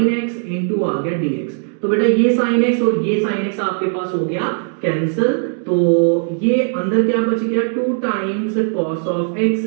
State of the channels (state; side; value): silent; left; 57 dB below the other